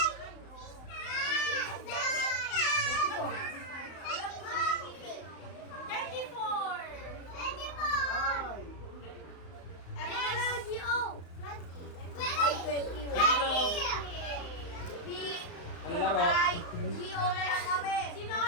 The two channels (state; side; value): late; right; 35 ms